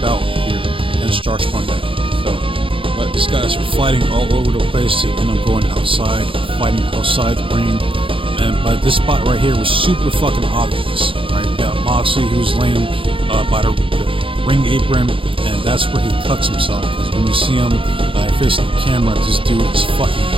here against Josh Barnett. But these guys are fighting all over the place. They end up going outside, fighting outside the ring. But this spot right here was super fucking obvious. Right? You got Moxley, who's laying by the ring apron, and that's where he cuts himself. Because when you see him facing the camera, this dude is fucking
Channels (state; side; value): late; left; 0.25 ms